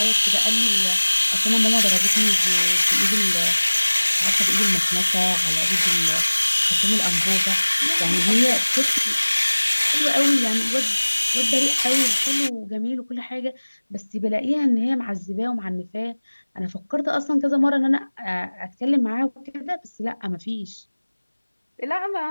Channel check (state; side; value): inverted; both; correlation -1.00